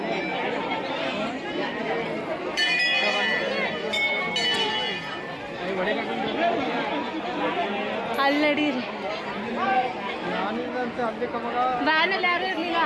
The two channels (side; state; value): both; identical; correlation 1.00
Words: ಅಲ್ಲಿ ನಡೀರಿ. ವ್ಯಾನಲ್ಲಿ ಯಾರು ಇರಲಿಲ್ಲ,